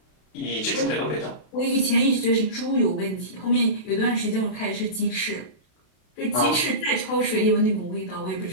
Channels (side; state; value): right; late; 32 ms